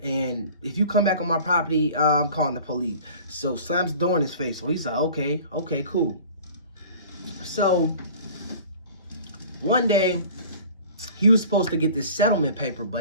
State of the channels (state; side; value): inverted; both; correlation -0.44